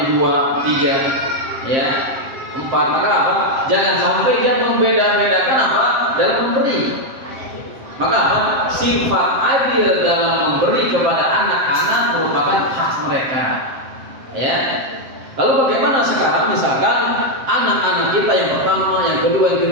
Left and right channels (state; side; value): late; left; 7.6 ms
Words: 3, ya 4, maka apa? Jangan sampai dia membeda-bedakan apa? Dalam memberi. Maka apa? Sifat adil dalam memberi kepada anak-anak merupakan hak mereka. Ya. Lalu bagaimana sekarang misalkan anak-anak kita yang pertama, yang kedua, yang